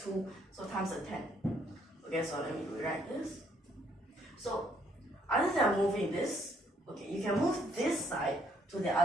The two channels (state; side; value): normal; both; correlation 0.68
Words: so times a 10. Okay, so let me rewrite this. So other than moving this, okay, you can move this side to the